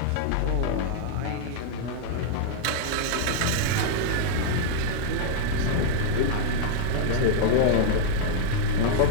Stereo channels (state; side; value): different; both; correlation -0.02